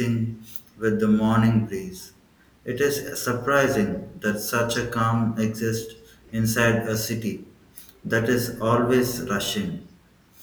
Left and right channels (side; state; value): both; identical; correlation 1.00